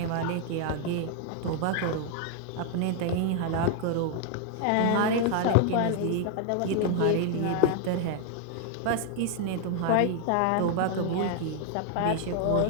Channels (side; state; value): both; different; correlation 0.00